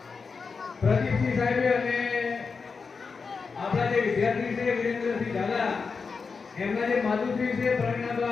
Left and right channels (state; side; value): quieter; right; 5.0 dB